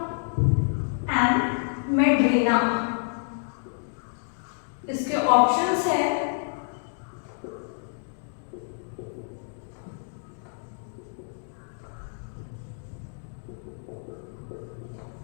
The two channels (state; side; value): silent; right; digital silence